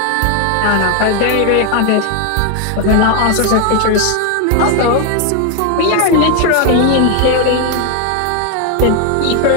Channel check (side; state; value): both; different; correlation 0.01